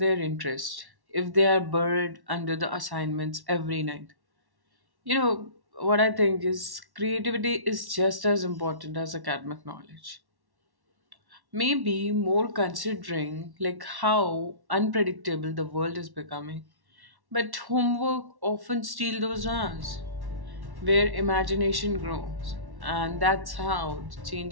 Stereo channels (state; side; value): late; left; 1.1 ms